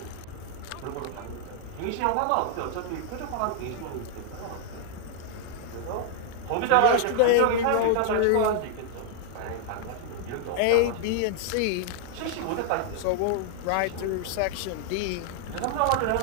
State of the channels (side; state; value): both; different; correlation -0.01